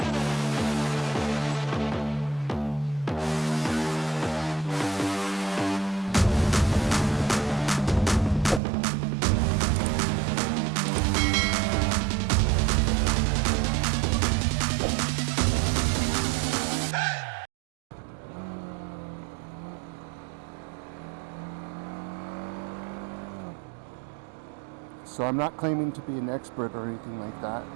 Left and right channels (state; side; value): drops out; left; at 8.6 s